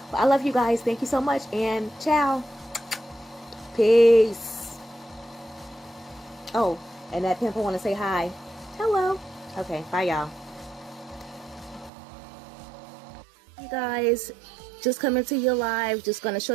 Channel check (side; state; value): left; drops out; at 11.9 s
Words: But I love you guys. Thank you so much, and ciao. Peace. Oh, and that pimple want to say hi. Hello. Okay, bye y'all. You guys, just coming to you live. Just gonna show